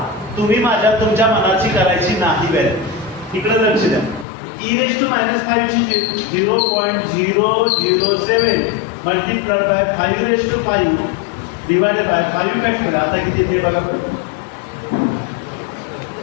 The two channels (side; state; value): right; drops out; at 4.2 s